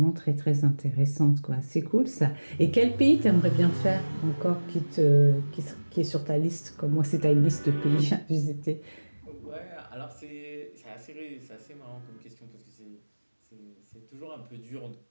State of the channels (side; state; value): both; inverted; correlation -1.00